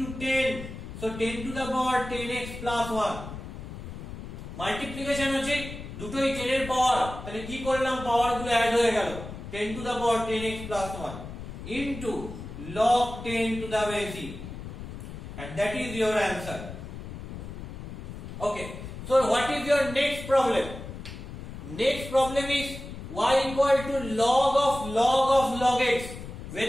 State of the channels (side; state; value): left; noise; rumble, 10 dB below the sound